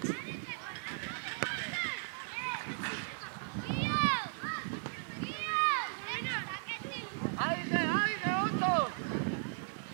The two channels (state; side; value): silent; left; 53 dB below the other